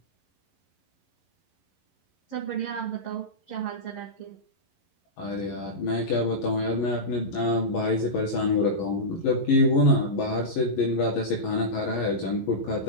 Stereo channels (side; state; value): right; late; 11 ms